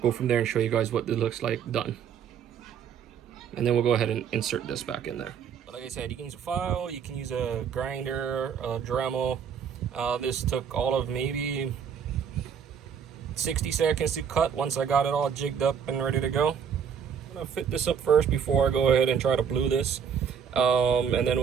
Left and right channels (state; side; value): quieter; left; 7.5 dB